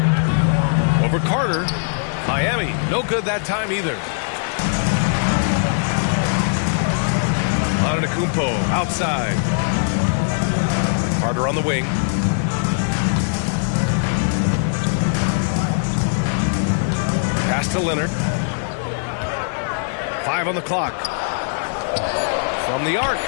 Over Carter. Miami, no good that time either. Antetokounmpo outside. Carter on the wing. Pass to Leonard. 5 on the clock. From the arc.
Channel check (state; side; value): silent; right; 64 dB below the other